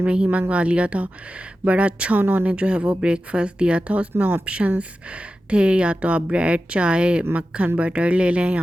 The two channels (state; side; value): normal; both; correlation 0.93